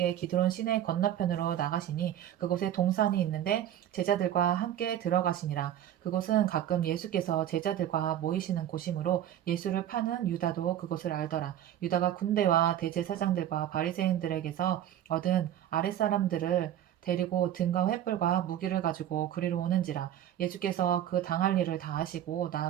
기드론 시내 건너편으로 나가시니 그곳에 동산이 있는데 제자들과 함께 들어가시니라. 그곳은 가끔 예수께서 제자들과 모이시는 곳이므로 예수를 파는 유다도 그곳을 알더라. 유다가 군대와 대제사장들과 바리새인들에게서 얻은 아랫사람들을 데리고 등과 횃불과 무기를 가지고 그리로 오는지라. 예수께서 그 당할 일을 다 하시고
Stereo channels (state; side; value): quieter; left; 11.2 dB